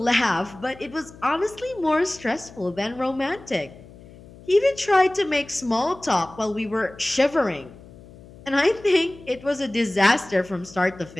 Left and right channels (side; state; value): left; noise; hum, 20 dB below the sound